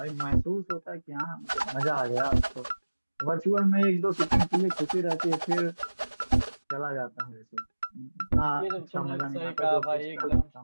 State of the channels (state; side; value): inverted; both; correlation -1.00